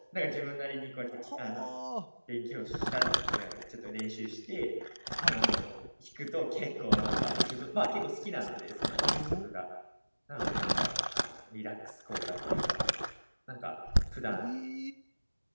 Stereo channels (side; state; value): both; inverted; correlation -1.00